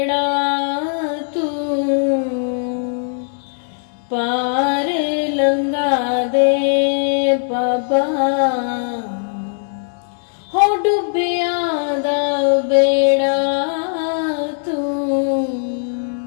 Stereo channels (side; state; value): right; silent; digital silence